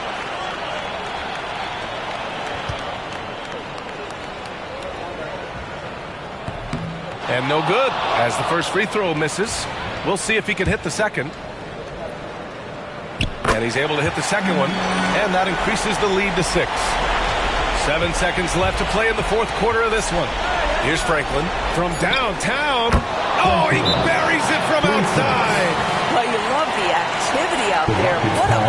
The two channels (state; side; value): identical; both; correlation 1.00